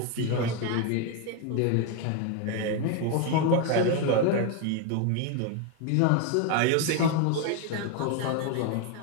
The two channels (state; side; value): different; both; correlation 0.01